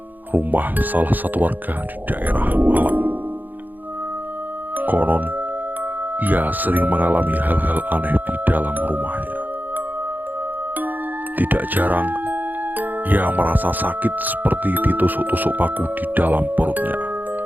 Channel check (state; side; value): late; left; 0.085 ms